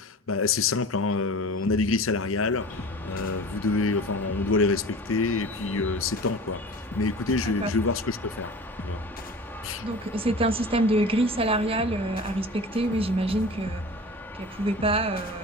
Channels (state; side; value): normal; both; correlation 0.37